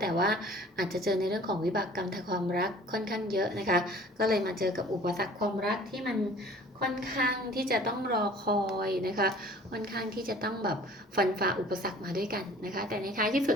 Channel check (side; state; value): both; normal; correlation 0.49